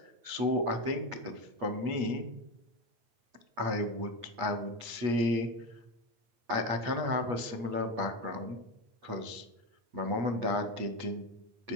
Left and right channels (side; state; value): left; late; 8.4 ms